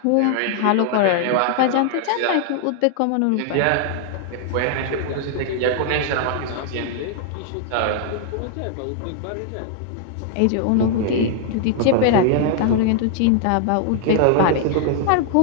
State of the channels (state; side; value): different; both; correlation 0.00